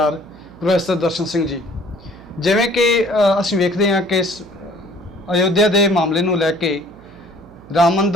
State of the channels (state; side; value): noise; right; hum, 23 dB below the sound